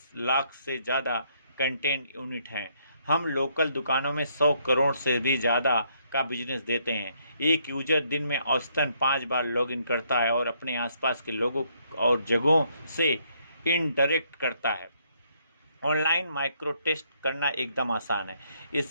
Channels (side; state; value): both; inverted; correlation -0.71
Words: लाख से ज़्यादा कंटेंट यूनिट हैं। हम लोकल दुकानों में 100 करोड़ से भी ज़्यादा का बिजनेस देते हैं। एक यूजर दिन में औसतन 5 बार लॉगिन करता है और अपने आसपास के लोगों और जगहों से इंटरेक्ट करता है। ऑनलाइन माइक्रो टेस्ट करना एकदम आसान है।